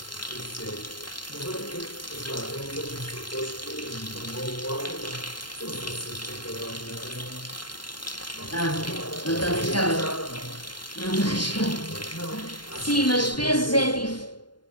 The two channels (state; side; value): late; right; 0.71 ms